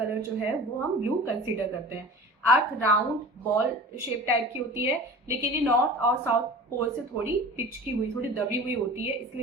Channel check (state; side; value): normal; both; correlation 0.38